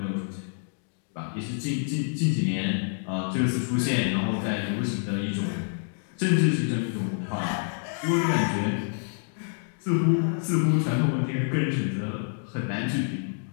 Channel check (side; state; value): right; silent; digital silence